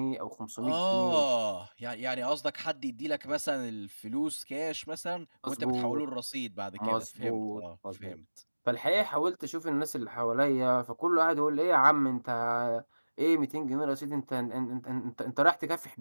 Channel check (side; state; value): both; inverted; correlation -1.00